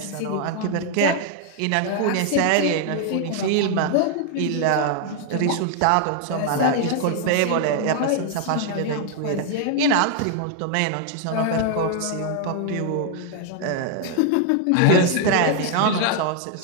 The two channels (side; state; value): both; different; correlation 0.00